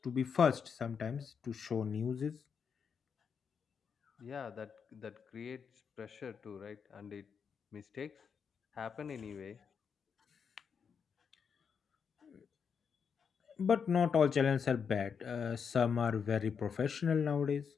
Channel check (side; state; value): right; quieter; 6.5 dB